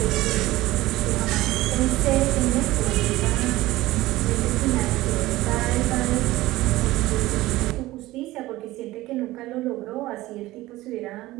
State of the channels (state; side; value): quieter; left; 17.7 dB